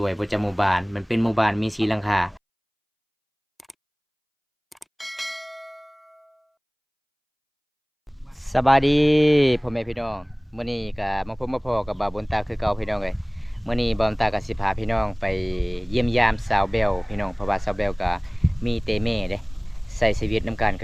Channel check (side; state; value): both; identical; correlation 1.00